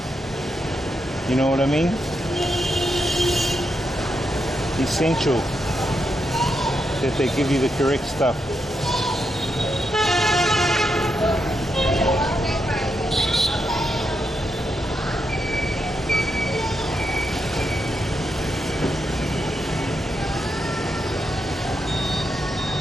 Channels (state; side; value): normal; both; correlation 0.83